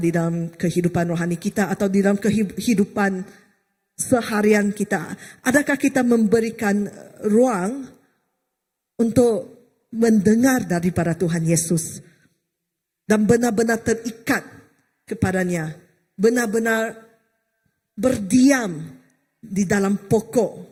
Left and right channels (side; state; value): both; identical; correlation 1.00